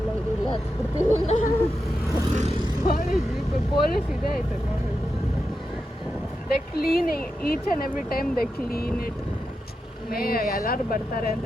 ಇದೆಲ್ಲ ಹತ್ಬಿಡ್ತೀವಿ. ಪೊಲೀಸ್ ಜೀಪ್, ಪೊಲೀಸ್ ಇದೆ ಆಯ್ತು ನೋಡಿ. They clean each and every time, they clean it. ಎಲ್ಲರೂ ಬರ್ತಾರೆ ಅಂತ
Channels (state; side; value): normal; both; correlation 0.88